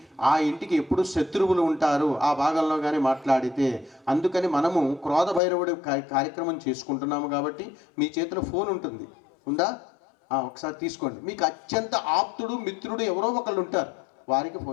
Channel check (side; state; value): right; drops out; at 5.4 s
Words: ఆ ఇంటికి ఎప్పుడు శత్రువులు ఉంటారు ఆ భాగంలో కానీ మాట్లాడితే. అందుకని మనము క్రోధ భైరవుడి కార్యక్రమం చేసుకుంటున్నాము. కాబట్టి మీ చేతిలో ఫోన్ ఉంటుంది, ఉందా? ఒకసారి తీసుకోండి. మీకు అత్యంత ఆప్తుడు మిత్రుడు ఎవరో ఒకళ్ళు ఉంటారు, వారికి